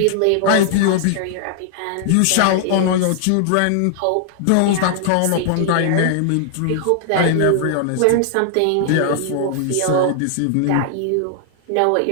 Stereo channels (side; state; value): both; different; correlation 0.00